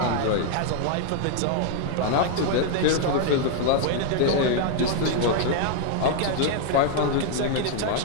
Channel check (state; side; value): different; both; correlation 0.00